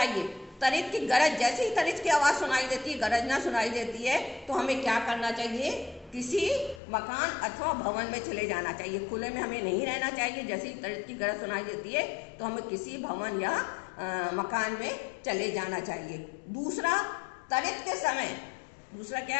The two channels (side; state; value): right; drops out; at 6.8 s